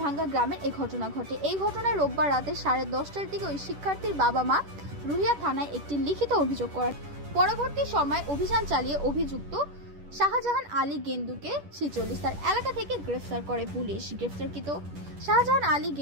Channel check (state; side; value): late; left; 10 ms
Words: ভাঙ্গা গ্রামের এই ঘটনা ঘটে। এই ঘটনায় রোববার রাতে 10:30টার দিকে ওই শিক্ষার্থীর বাবা মা রুহিয়া থানায় একটি লিখিত অভিযোগ করেন। পরবর্তী সময় অভিযান চালিয়ে অভিযুক্ত শাহজাহান আলী গেন্দুকে 46 তার এলাকা থেকে গ্রেফতার করে পুলিশ। গ্রেফতারকৃত শাহজাহান আলী